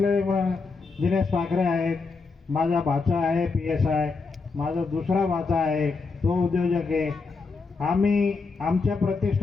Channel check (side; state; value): right; quieter; 4.4 dB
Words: दिनेश पाखरे आहेत, माझा भाचा आहे PSI, माझा दुसरा भाचा आहे तो उद्योजक आहे. आम्ही आमच्या